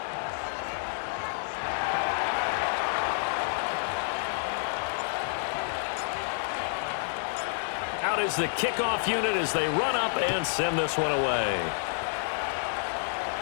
Out is the kickoff unit as they run up and send this one away.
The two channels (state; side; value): silent; right; digital silence